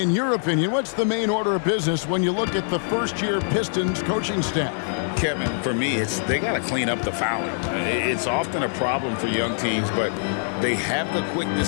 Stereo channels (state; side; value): silent; right; 63 dB below the other